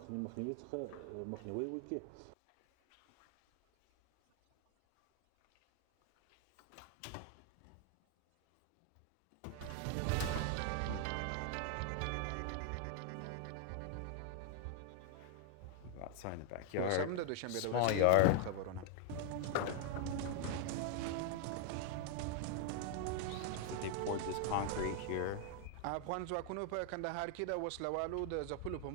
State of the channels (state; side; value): different; both; correlation 0.00